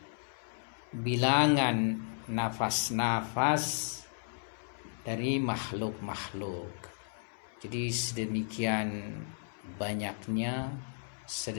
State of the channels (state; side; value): silent; right; 55 dB below the other